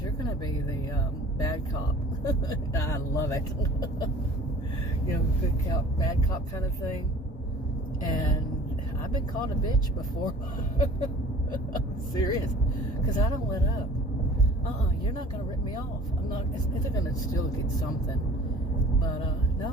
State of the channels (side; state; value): both; normal; correlation 0.47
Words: you're going to be the bad cop. I love it. You know, good cop, bad cop kind of thing. And I've been called a bitch before. I'm serious. Because I don't let up. You're not going to rip me off. I'm not. They're going to still get something. But,